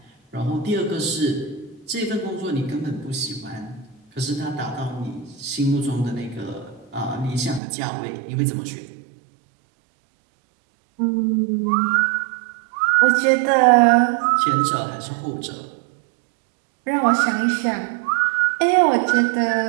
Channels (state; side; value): drops out; left; at 7.6 s